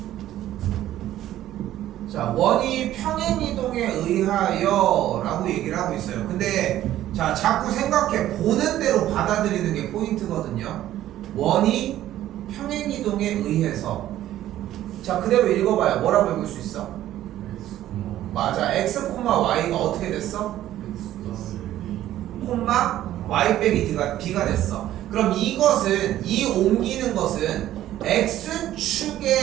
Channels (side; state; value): left; quieter; 13.2 dB